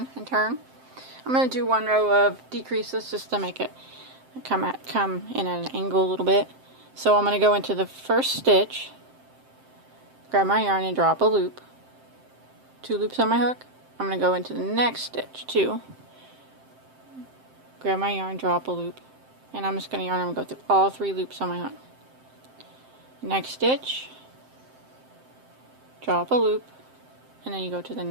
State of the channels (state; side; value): late; left; 7.7 ms